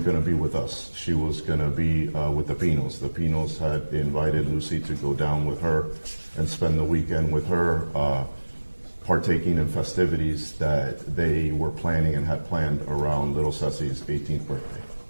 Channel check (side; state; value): both; inverted; correlation -1.00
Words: going to be with us. She was going to be with the Pinos. The Pinos had invited Lucy to go down with her and spend the weekend with her, partaking in festivities that they were planning and had planned around little Ceci's 18th birthday.